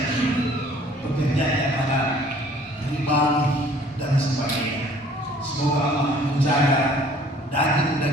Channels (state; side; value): normal; both; correlation 0.55